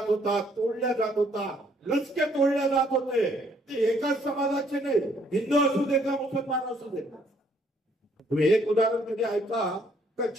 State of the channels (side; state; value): both; normal; correlation 0.66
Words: होता, तोडल्या जात होता, लचके तोडल्या जात होते. ते एकाच समाजाचे नाही, हिंदू असू दे का मुसलमान असू दे. तुम्ही एक उदाहरण कधी ऐका का